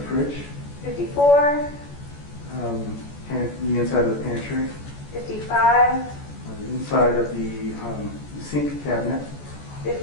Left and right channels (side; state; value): right; late; 14 ms